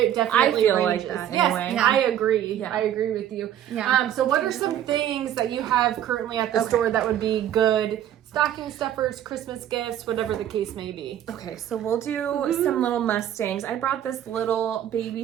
definitely I feel like ranges. that Yes, anyway. Yeah. I agree. Yeah. I agree with you. Yeah. So what are some things that you have currently at the Okay. store that would be good stocking stuffers, Christmas gifts, whatever the case may be? Okay, so we'll do some little Mustangs. I brought this little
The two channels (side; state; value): left; quieter; 11.0 dB